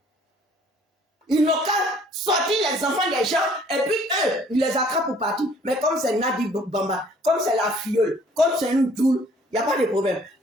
Ils n'ont qu'à sortir les enfants des gens. Et puis, eux, ils les attrapent pour partir. Mais comme c'est Nadi Bamba, comme c'est la filleule, comme c'est une doule, il n'y a pas de problème.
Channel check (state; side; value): normal; both; correlation 0.57